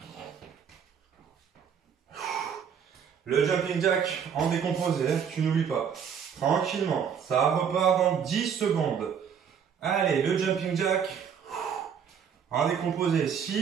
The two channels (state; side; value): quieter; left; 7.5 dB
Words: Le jumping jack en décomposé, tu n'oublies pas. Tranquillement, ça repart dans 10 secondes. Allez, le jumping jack en décomposé.